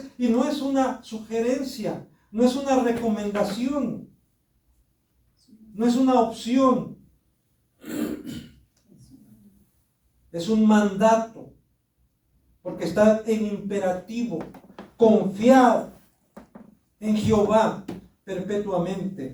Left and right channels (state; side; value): identical; both; correlation 1.00